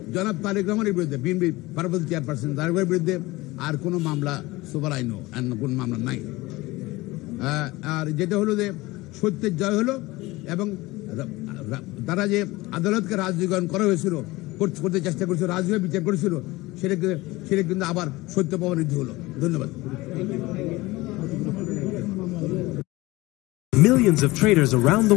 জনাব তারেক রহমানের বিরুদ্ধে, বিএনপি ভারপ্রাপ্ত চেয়ারপারসন তারেকের বিরুদ্ধে আর কোনো মামলা সুপার আইনও কোন মামলা নাই। আর যেটা হলো যে সত্যের জয় হলো এবং তারা যে আদালতকে রাজনীতিকরণ করা হয়েছিল, করতে চেষ্টা করেছিল, রাজনীতি বিচার করেছিল, সেটা কিন্তু আবার সত্য প্রমাণিত হলো। ধন্যবাদ। Millions of traders around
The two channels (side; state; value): right; quieter; 20.5 dB